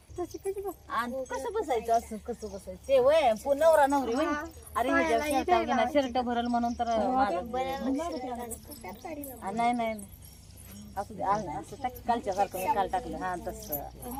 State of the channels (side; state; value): both; identical; correlation 1.00